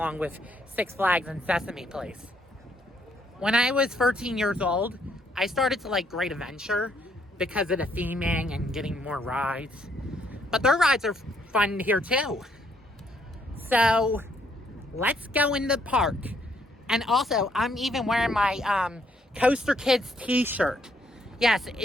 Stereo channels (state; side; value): normal; both; correlation 0.70